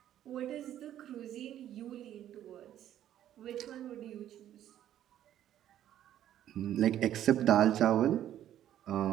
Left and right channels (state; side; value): quieter; left; 11.6 dB